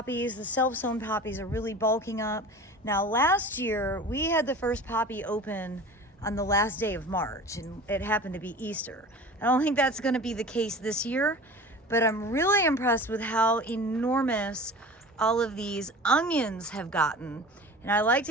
The self-sown poppies are really bulking up. Now last year, we had the first poppy open on the last day of March, and it happened to be Easter. I don't think that's gonna be the case this year, but I'm really impressed with how enormous all of these onions have gotten. And I like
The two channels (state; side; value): normal; both; correlation 0.38